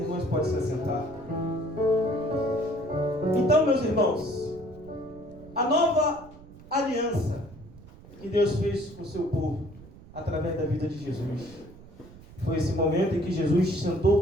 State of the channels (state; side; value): noise; right; rumble, 19 dB below the sound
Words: podem se assentar. Então, meus irmãos, a nova aliança que Deus fez com o seu povo, através da vida de Jesus, foi esse momento em que Jesus sentou